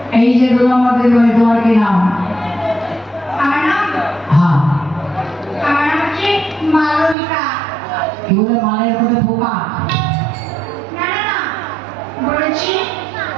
এই যে 2 নম্বর দিন তোমার কি নাম? আমার নাম হ্যাঁ আমার নাম হচ্ছে মালবিকা। কি বলে মালের মধ্যে পোকা? না না না বলেছি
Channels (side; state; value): left; drops out; at 7.2 s